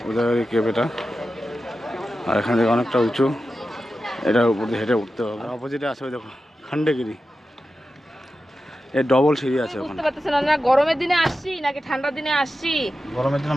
উদয়গিরি কেভ এটা। আর এখান থেকে অনেকটা উঁচু, এটার উপর দিয়ে হেঁটে উঠতে হবে। অপোজিটে আছে ওই দেখো খণ্ডগিরি, এর ডবল সিঁড়ি আছে ওখানে। বুঝতে পারতেছেন না গরমের দিনে আসছি নাকি ঠান্ডার দিনে আসছি? গরমের দিনে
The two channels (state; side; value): normal; both; correlation 0.92